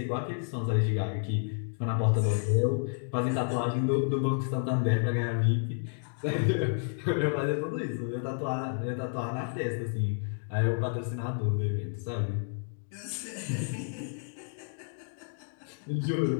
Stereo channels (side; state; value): right; silent; digital silence